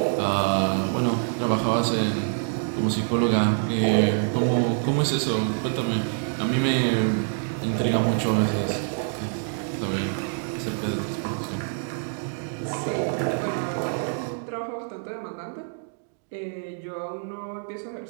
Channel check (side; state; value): left; silent; 61 dB below the other